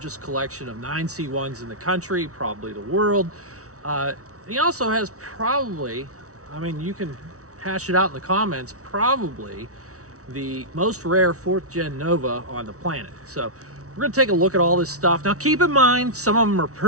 collection of 9C1s in the country, probably the world. He also has probably, I mean, you can hash it out in the comments, probably the most rare 4th gen Nova on the planet. So we're going to take a look at all this stuff. Now keep in mind, some of them are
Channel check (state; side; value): late; left; 0.65 ms